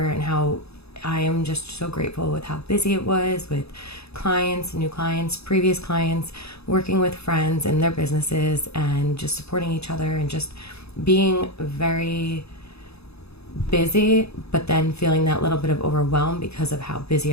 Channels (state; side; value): late; right; 0.79 ms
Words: and how I am just so grateful with how busy it was with clients, new clients, previous clients, working with friends and their businesses and just supporting each other and just being very busy, but then feeling that little bit of overwhelm because of how